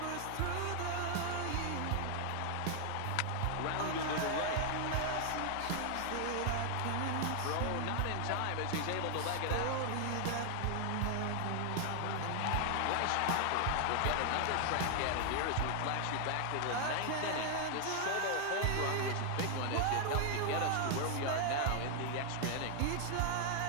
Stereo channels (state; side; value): different; both; correlation 0.00